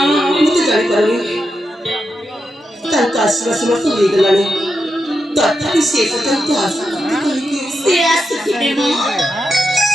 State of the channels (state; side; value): normal; both; correlation 0.87